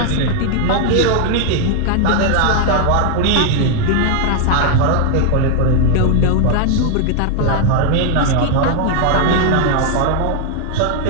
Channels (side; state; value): both; different; correlation 0.00